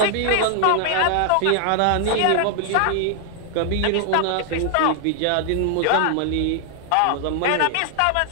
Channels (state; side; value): different; both; correlation 0.00